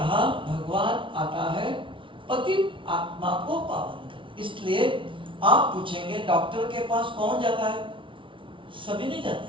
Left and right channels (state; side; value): late; left; 0.25 ms